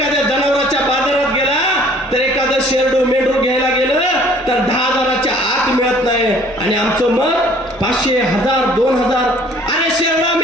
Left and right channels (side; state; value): both; normal; correlation 0.55